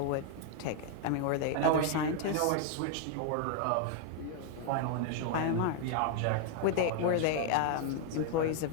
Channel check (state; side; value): different; both; correlation 0.00